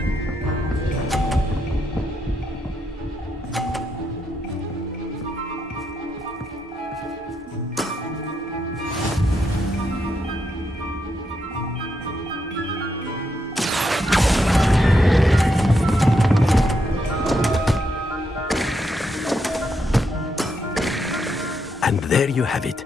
And there you have it.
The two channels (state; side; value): normal; both; correlation 0.80